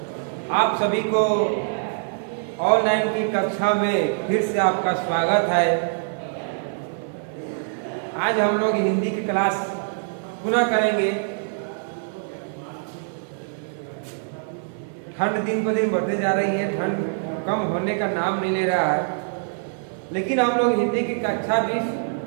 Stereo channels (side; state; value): left; silent; 58 dB below the other